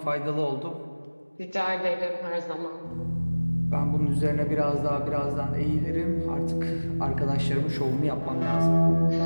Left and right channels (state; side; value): inverted; both; correlation -1.00